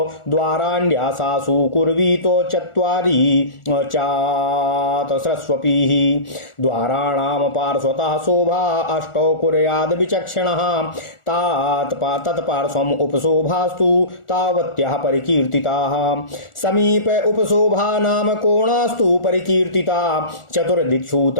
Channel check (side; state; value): right; late; 1.4 ms